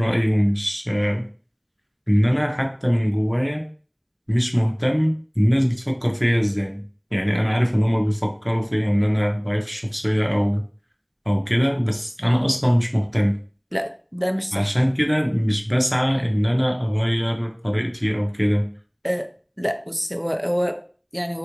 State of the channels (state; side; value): identical; both; correlation 1.00